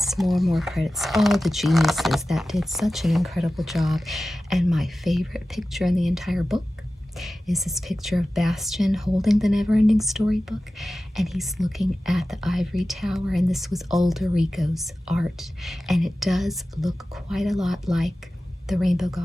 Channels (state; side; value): normal; both; correlation 0.95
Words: more credits. All the geniuses that did such an incredible job. And my favorite picture in the entire book is this picture of Bastian holding the Neverending Story book, and he's looking at the ivory tower, and this was old RICO's art, and it does look quite a lot like the Rainbow